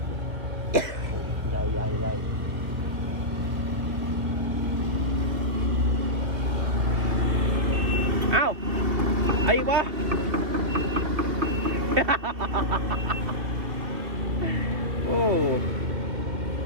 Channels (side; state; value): left; late; 2.5 ms